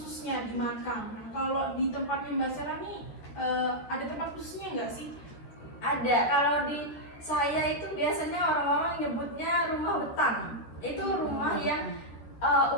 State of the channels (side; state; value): right; late; 13 ms